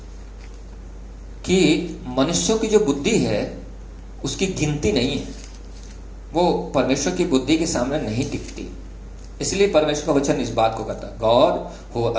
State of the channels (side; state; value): both; identical; correlation 1.00